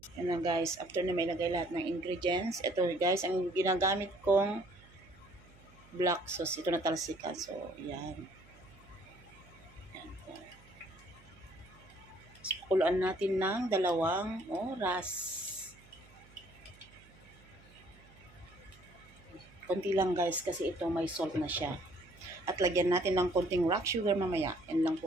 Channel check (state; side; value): noise; right; hum, 25 dB below the sound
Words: Yan na guys. After na may ilagay lahat ng ingredients. Ito guys, ang ginagamit kong black sauce. Ito na talsikan. So, yan. Yan po. Pakuluan natin ng 2 oras. Konti lang guys kasi ito may salt na siya. At lagyan natin ng konting rock sugar mamaya. Yan lang